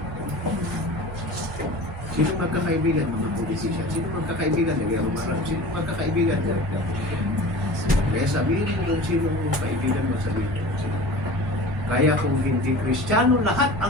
Sino magkakaibigan, mga politician? Sino magkakaibigan, nag-iarong-arang? Sino magkakaibigan? Kaya sabihin mo kung sino ang kaibigan mo, sabihin mo kung sino. Kaya kung hindi Kristiyano, lahat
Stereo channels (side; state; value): both; normal; correlation 0.37